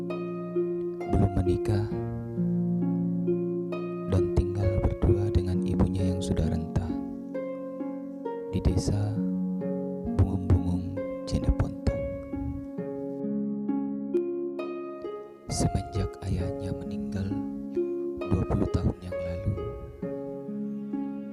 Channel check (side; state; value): both; identical; correlation 1.00